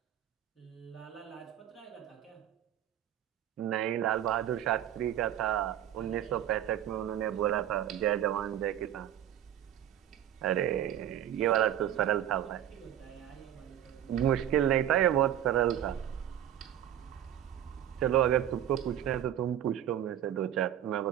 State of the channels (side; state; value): left; quieter; 11.2 dB